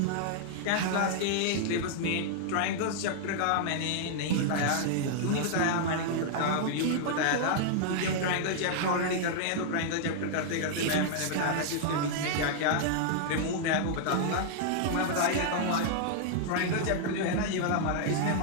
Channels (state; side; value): different; both; correlation -0.01